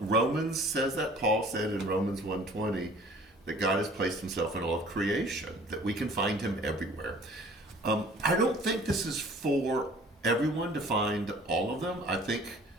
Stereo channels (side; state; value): both; normal; correlation 0.51